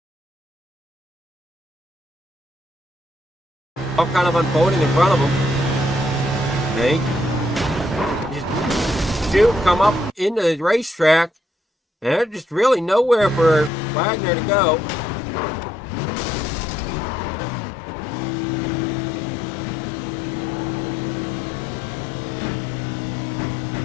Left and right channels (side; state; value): right; drops out; at 13.7 s